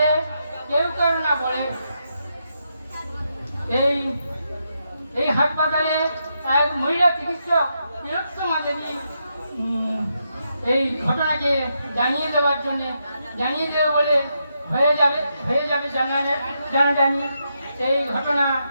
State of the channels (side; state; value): both; inverted; correlation -0.82